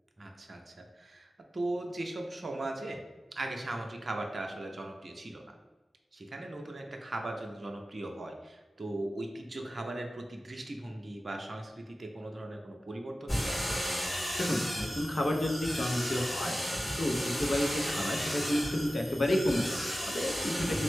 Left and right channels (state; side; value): normal; both; correlation 0.95